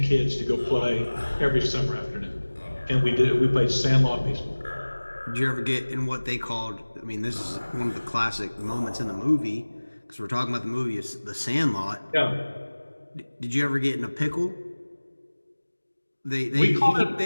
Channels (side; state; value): both; inverted; correlation -1.00